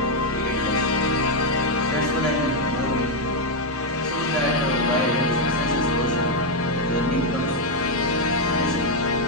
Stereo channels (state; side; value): normal; both; correlation 0.02